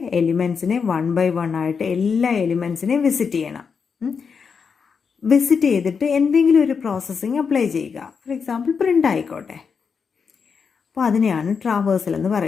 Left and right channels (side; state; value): right; quieter; 5.9 dB